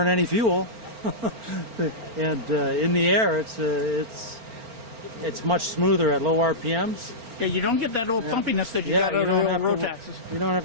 any fuel. And in the air, it's much smoother at low RPMs. Yeah, you don't get that old pumpiness that you got out of the Rotaxes. You don't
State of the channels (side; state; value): left; late; 4.4 ms